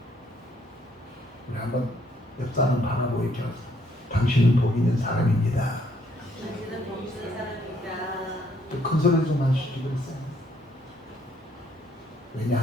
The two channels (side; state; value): both; normal; correlation 0.68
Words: 우리 한번 옆 사람 바라보고 이렇게 하세요. 당신은 복 있는 사람입니다. 당신은 복 있는 사람입니다. 큰 소리 좀 하시지 그랬어요.